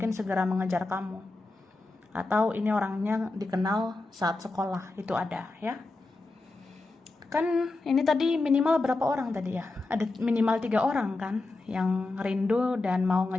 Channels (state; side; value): quieter; right; 3.2 dB